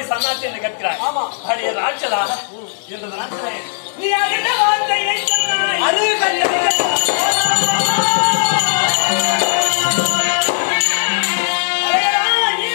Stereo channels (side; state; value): right; silent; digital silence